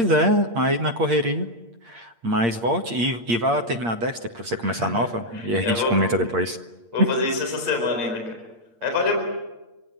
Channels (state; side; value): late; left; 8.6 ms